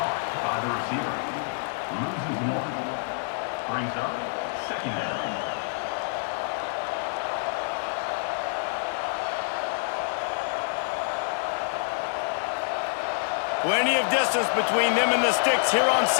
by the receiver. Loses one. Brings up second down. Plenty of distance between them and the sticks here on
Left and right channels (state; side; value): silent; right; digital silence